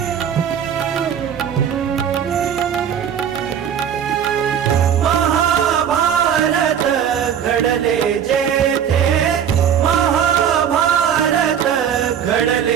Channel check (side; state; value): left; quieter; 8.6 dB